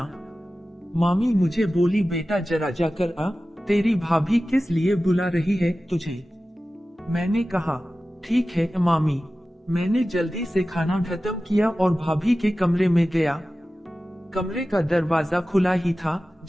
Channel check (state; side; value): normal; both; correlation 0.95